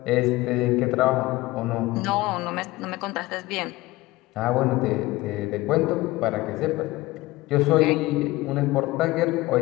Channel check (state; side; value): quieter; right; 19.3 dB